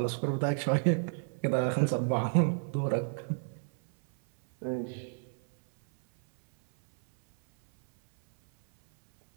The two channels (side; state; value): left; silent; 58 dB below the other